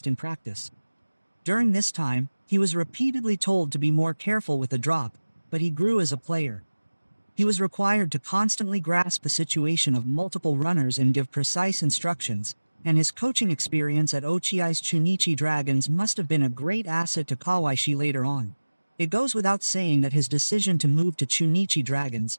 in practice. During this time, he was repeatedly told to be more careful with the drop, but he grew as a player. He was required to constantly grasp the situation of multiple runners and give precise instructions, and his coaching experience at Ochiai's Chunichi Dragons must have been a great asset to Kawaishi later on. It goes without saying that his decision to move to Chunichi Dragons,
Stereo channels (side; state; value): both; inverted; correlation -1.00